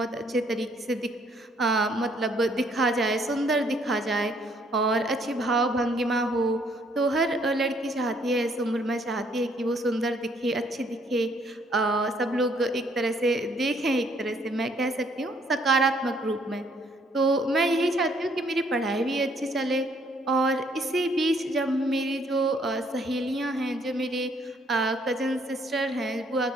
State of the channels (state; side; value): normal; both; correlation 0.66